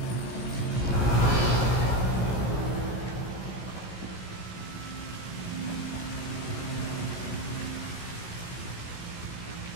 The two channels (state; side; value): late; right; 17 ms